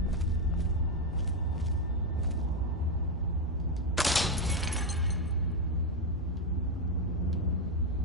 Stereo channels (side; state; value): both; normal; correlation 0.06